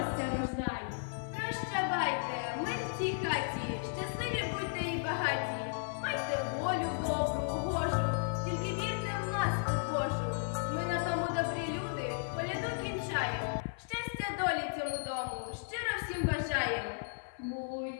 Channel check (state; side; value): silent; right; 55 dB below the other